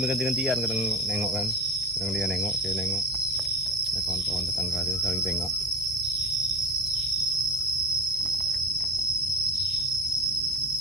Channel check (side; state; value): both; normal; correlation 0.32